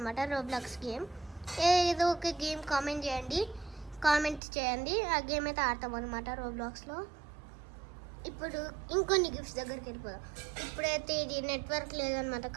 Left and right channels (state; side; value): drops out; left; at 4.4 s